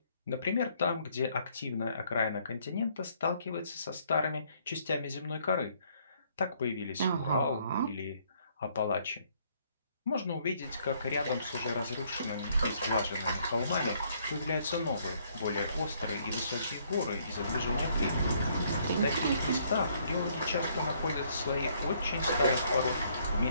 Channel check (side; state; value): both; inverted; correlation -0.66